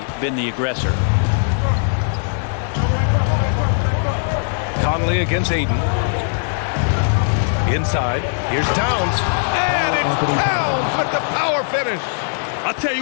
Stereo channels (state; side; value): silent; right; digital silence